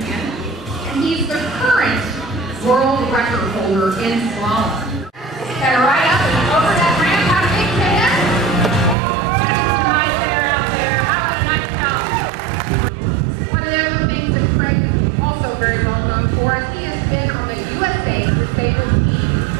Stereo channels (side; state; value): left; drops out; at 9.0 s